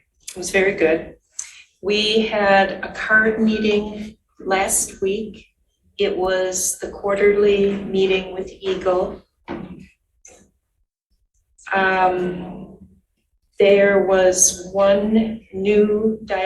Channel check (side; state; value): both; identical; correlation 1.00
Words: was very good. We had a card meeting last week. It was the quarterly meeting with Eagle. There was one new